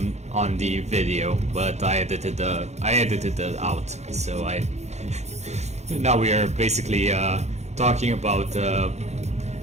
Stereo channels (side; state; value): left; late; 0.32 ms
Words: the video, but I edited it out, so now we are basically talking about